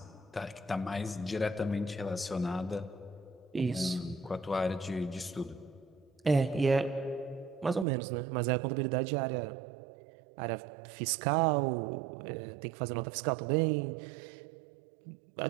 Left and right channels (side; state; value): left; drops out; at 7.9 s